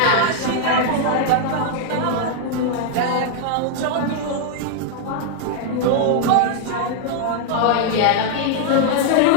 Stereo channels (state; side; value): different; both; correlation 0.00